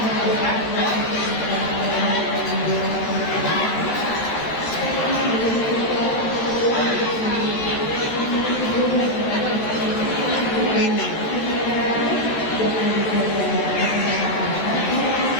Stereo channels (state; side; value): late; right; 13 ms